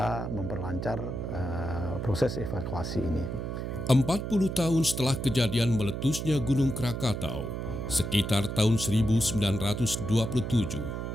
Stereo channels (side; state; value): right; noise; hum, 4 dB below the sound